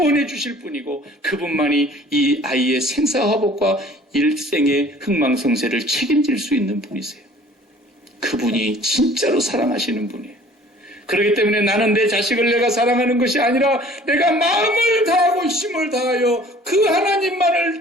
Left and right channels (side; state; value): both; normal; correlation 0.51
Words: 주실 분이고 그분만이 이 아이의 생사화복과 일생의 흥망성쇠를 책임질 수 있는 분이세요. 그분이 진짜로 사랑하시는 분이에요. 그렇기 때문에 나는 내 자식을 내가 사랑하는 것이 아니라 내가 마음을 다하고 힘을 다하여 그